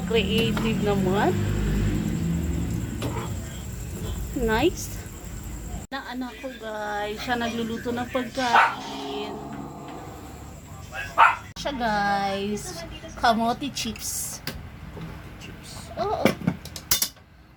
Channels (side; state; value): both; identical; correlation 1.00